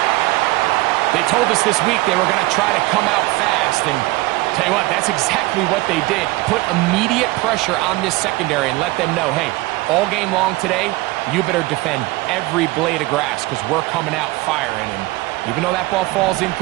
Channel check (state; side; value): quieter; left; 20.5 dB